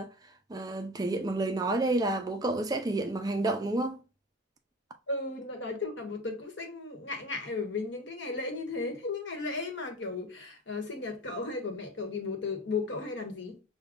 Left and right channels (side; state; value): both; normal; correlation 0.36